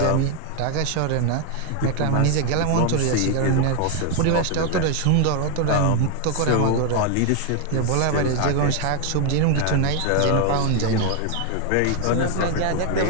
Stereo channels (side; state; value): both; different; correlation 0.00